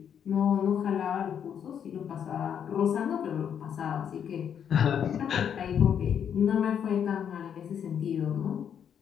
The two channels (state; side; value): quieter; right; 8.4 dB